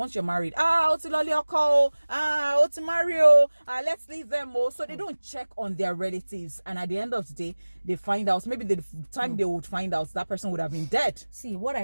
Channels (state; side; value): inverted; both; correlation -1.00